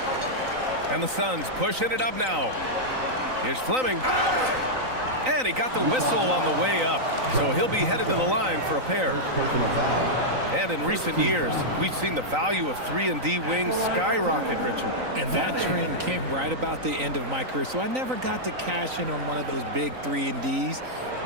And the Suns pushing it up now. Here's Fleming. And he got the whistle on the way up. So he'll be headed to the line for a pair. And in recent years, we've seen the value of 3-and-D wings skyrocket, Richard. And that trend came right about the end of my career. So I never got to cash in on one of those big 3-and-Ds.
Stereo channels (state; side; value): late; left; 3.9 ms